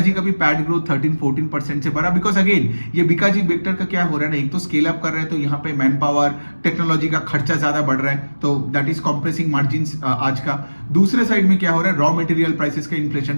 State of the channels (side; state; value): both; inverted; correlation -1.00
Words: का भी पैड ग्रोथ 13-14% से बढ़ा, बिकॉज अगेन ये बिकाजी बेक्टर का क्या हो रहा है ना, एक तो स्केल अप कर रहा है तो यहाँ पे मैन पावर, टेक्नोलॉजी का खर्चा ज्यादा बढ़ रहा है, तो दैट इज कॉम्प्रेसिंग मार्जिन आज का। दूसरे साइड में क्या हो रहा है, रॉ मटेरियल प्राइसेस का